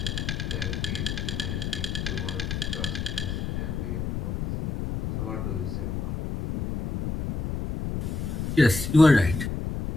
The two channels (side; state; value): left; noise; rumble, 3 dB below the sound